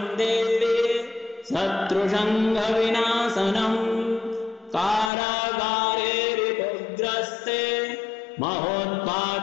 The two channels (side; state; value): right; drops out; at 5.1 s